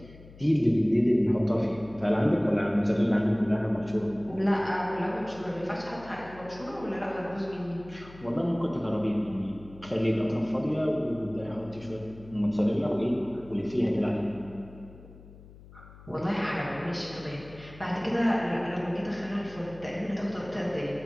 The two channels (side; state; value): left; noise; hum, 20 dB below the sound